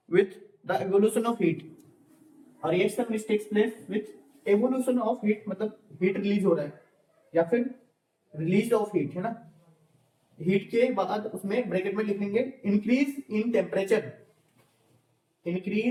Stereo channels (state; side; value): identical; both; correlation 1.00